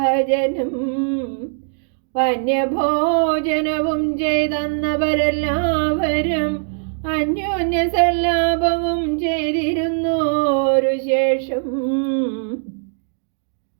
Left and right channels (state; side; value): silent; left; digital silence